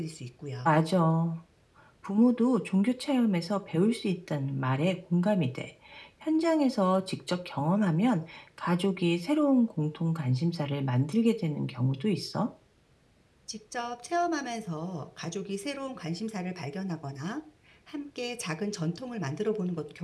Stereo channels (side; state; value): both; identical; correlation 1.00